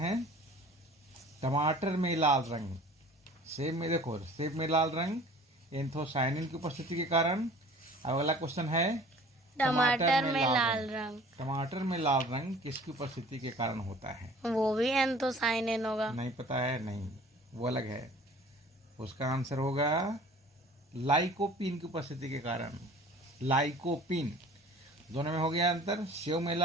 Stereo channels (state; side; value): normal; both; correlation 0.48